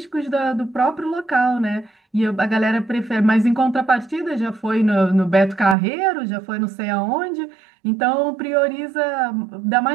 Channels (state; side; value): drops out; left; at 5.8 s